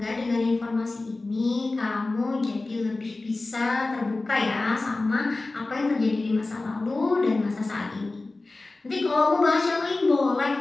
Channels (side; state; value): right; quieter; 3.2 dB